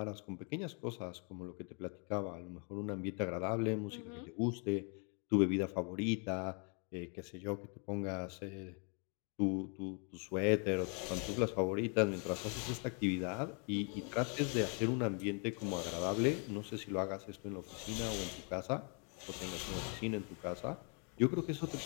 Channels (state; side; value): quieter; right; 37.6 dB